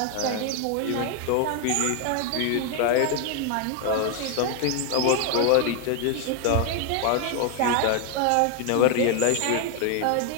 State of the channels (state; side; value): different; both; correlation 0.01